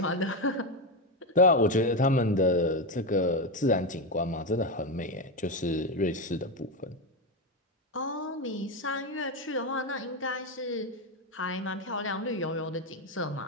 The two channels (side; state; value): both; normal; correlation 0.12